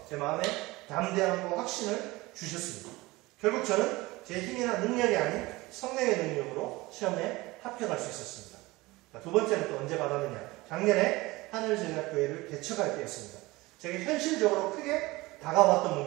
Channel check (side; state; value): left; quieter; 21.1 dB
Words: 제 마음에 담대함과 확신을 주셨습니다. 결국 저는 제 힘이나 능력이 아닌 성령의 능력으로 시험에 합격할 수 있었습니다. 두 번째는 또 언제 받았느냐? 작년에 하늘제자교회를 개척할 때였습니다. 제게 현실적으로 크게 다가왔던